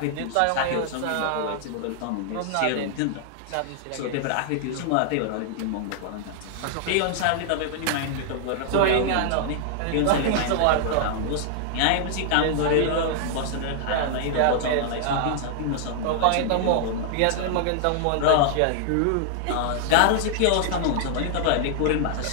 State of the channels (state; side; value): different; both; correlation -0.01